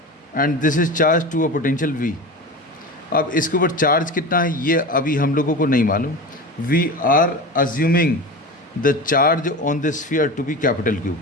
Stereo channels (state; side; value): normal; both; correlation 0.28